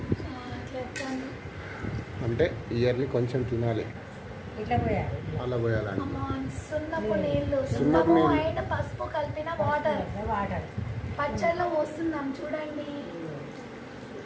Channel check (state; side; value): identical; both; correlation 1.00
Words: అంటే ఇయర్లీ కొంచెం తినాలి. ఇట్లా పోయాలి. అలా పోయాలండి. సున్నపు నీళ్ళు, సున్నపు అండ్ పసుపు కలిపిన వాటర్ పచ్చడిలో పోస్తున్నాం. చూడండి,